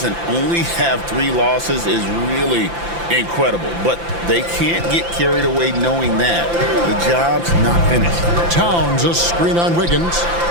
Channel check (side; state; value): left; late; 5.9 ms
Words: and only have 3 losses is really incredible. But they can't get carried away knowing that the job's not finished. Towns, a screen on Wiggins.